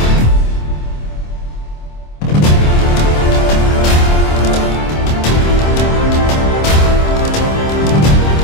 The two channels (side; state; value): right; late; 26 ms